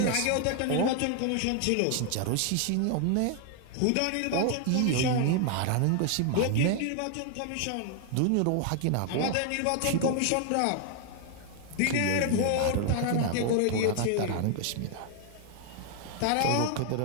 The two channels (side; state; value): both; different; correlation 0.00